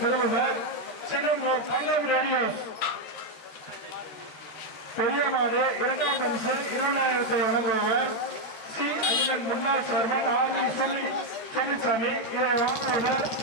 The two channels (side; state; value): right; late; 13 ms